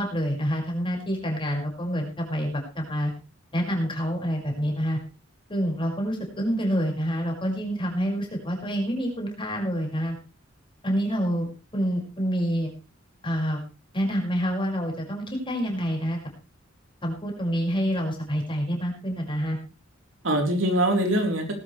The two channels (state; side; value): normal; both; correlation 0.73